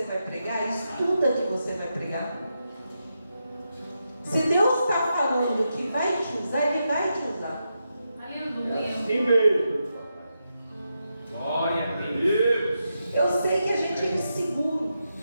vai pregar, estuda que você vai pregar. Se Deus está falando que vai te usar, Ele vai te usar. Aleluia. Assim mesmo. Glória a Deus. Eu sei que a gente é inseguro.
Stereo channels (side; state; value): both; inverted; correlation -0.86